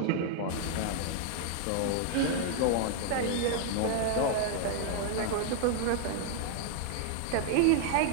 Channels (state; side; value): different; both; correlation 0.00